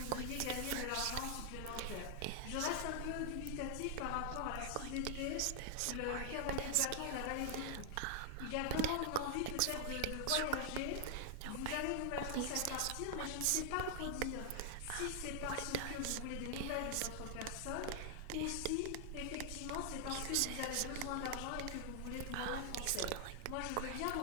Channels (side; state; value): both; different; correlation 0.00